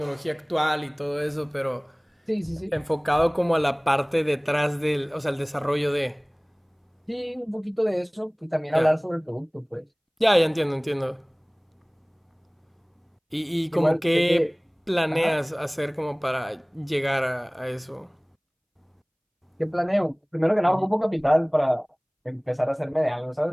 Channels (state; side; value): identical; both; correlation 1.00